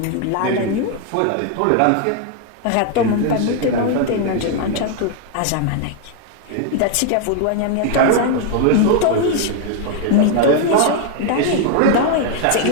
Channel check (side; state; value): both; different; correlation 0.00